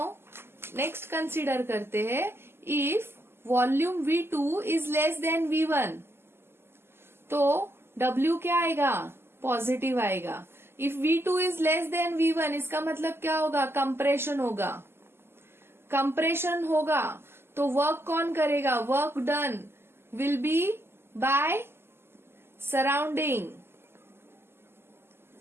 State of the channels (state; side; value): late; left; 0.12 ms